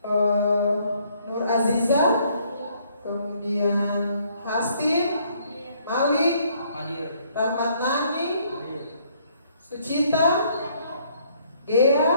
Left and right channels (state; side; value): inverted; both; correlation -0.66